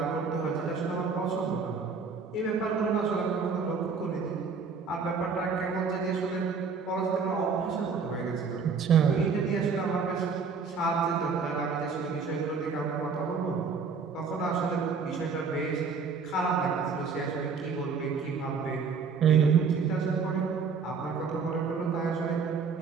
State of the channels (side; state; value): left; quieter; 5.3 dB